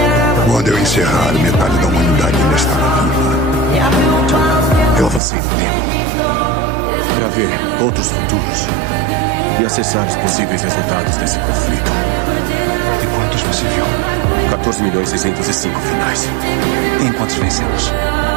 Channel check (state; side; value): drops out; left; at 5.2 s